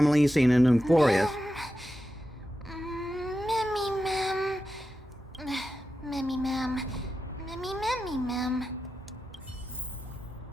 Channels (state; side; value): normal; both; correlation 0.90